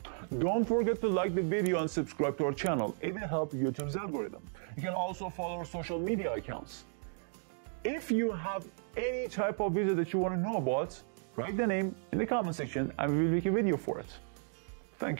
Don't forget to like the video and subscribe to our channel. It will help YouTube's algorithm. You can also follow our social media accounts. If you have any type of visa that you want to know about, write the name in the comment section and we will make a video for it.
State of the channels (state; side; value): silent; left; 55 dB below the other